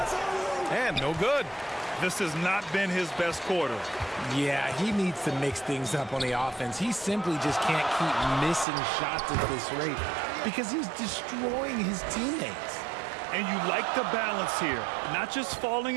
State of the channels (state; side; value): drops out; left; at 8.7 s